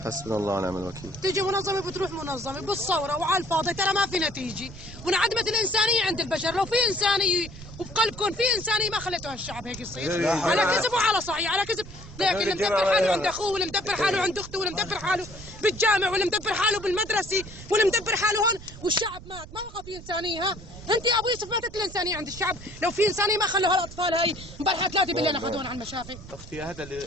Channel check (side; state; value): right; noise; rumble, 15 dB below the sound